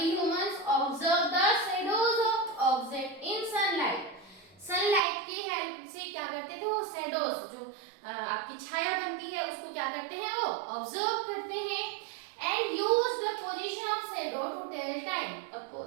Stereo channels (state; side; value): drops out; left; at 5.0 s